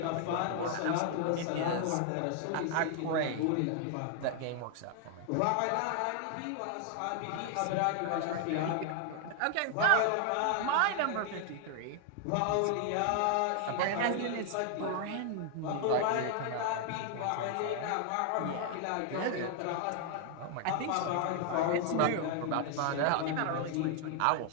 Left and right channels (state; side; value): different; both; correlation 0.00